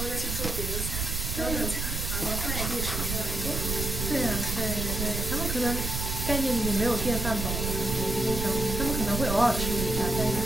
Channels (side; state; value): right; noise; rumble, 2 dB below the sound